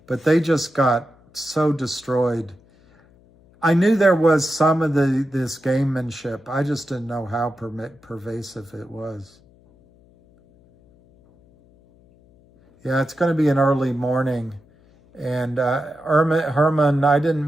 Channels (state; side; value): noise; left; hum, 29 dB below the sound